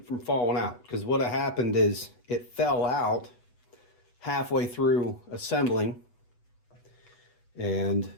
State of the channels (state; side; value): late; right; 8.1 ms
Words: from falling out. Because what happened is it fell out halfway through assembling, and